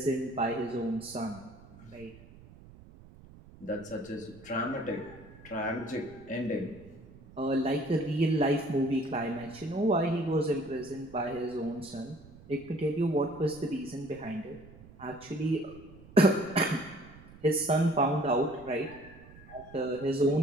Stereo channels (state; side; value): noise; right; rumble, 21 dB below the sound